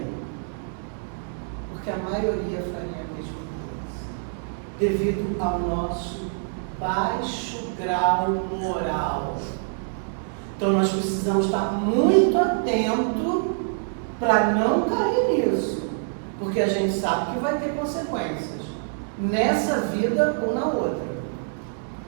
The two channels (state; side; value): silent; left; digital silence